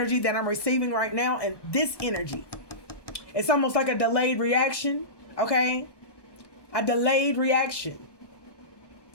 that I'm receiving right now. And this energy, it's almost like a delayed reaction. Okay? A delayed reaction.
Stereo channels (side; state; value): right; late; 1.2 ms